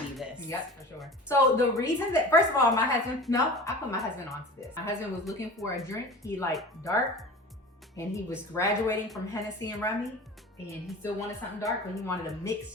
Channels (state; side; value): normal; both; correlation 0.37